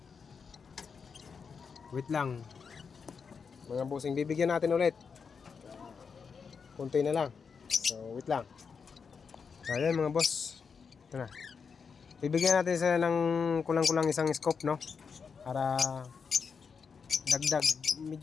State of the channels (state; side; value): quieter; right; 5.8 dB